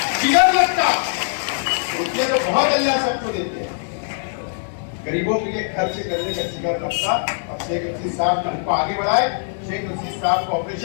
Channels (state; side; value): silent; right; digital silence